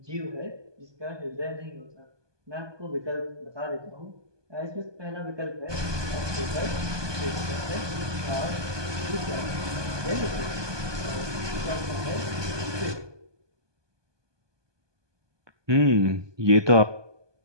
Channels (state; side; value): late; left; 1.2 ms